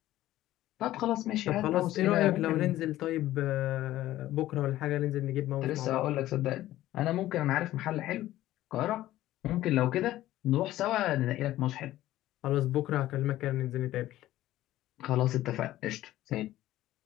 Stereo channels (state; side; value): quieter; right; 14.8 dB